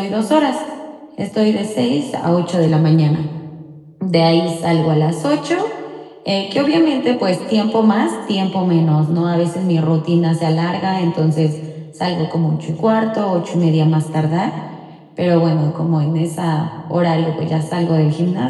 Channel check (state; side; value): identical; both; correlation 1.00